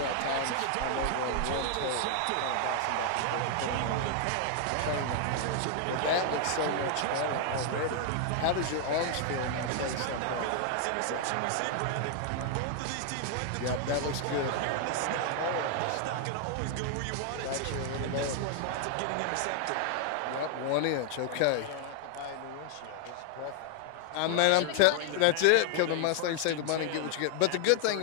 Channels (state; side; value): different; both; correlation 0.00